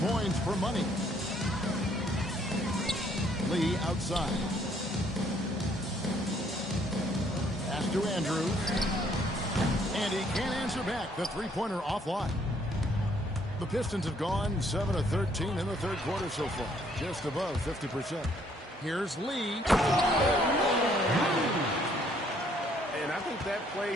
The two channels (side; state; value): both; normal; correlation 0.65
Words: points for money. Lee outside. Pass to Andrews. And he can't answer back. The 3-pointer offline. The Pistons have gone 7 of 13 in the third quarter so far. Just above 50%. Here's Lee. And I think that play